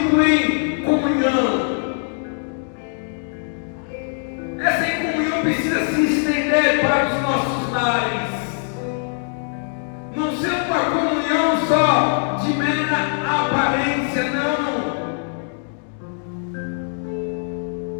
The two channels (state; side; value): silent; right; 64 dB below the other